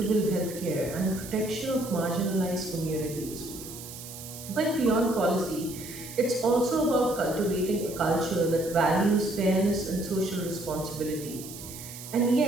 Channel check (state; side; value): noise; right; hiss, 13 dB below the sound